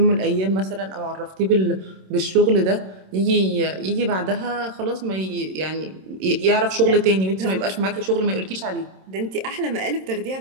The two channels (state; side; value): late; left; 27 ms